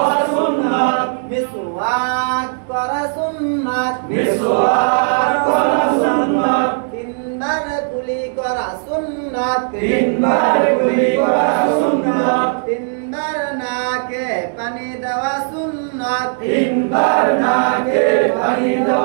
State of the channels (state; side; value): silent; left; digital silence